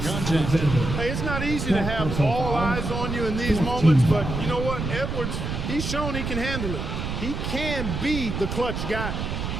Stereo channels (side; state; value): right; noise; rumble, 4 dB below the sound